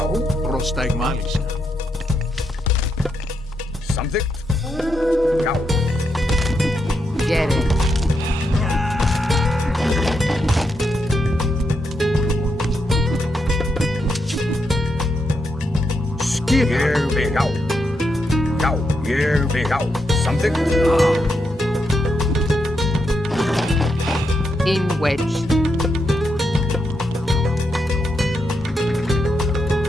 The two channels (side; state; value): both; normal; correlation 0.82